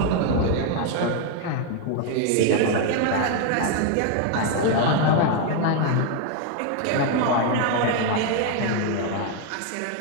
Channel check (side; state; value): both; different; correlation 0.01